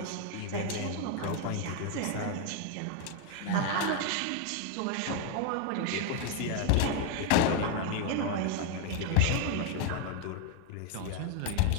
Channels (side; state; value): both; different; correlation 0.01